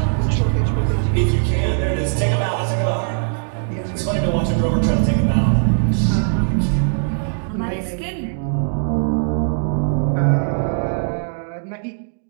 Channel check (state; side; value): silent; left; digital silence